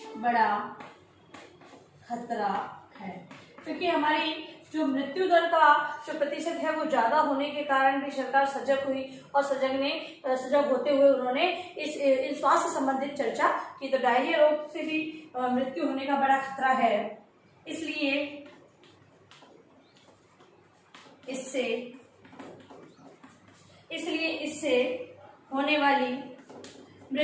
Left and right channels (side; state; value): both; identical; correlation 1.00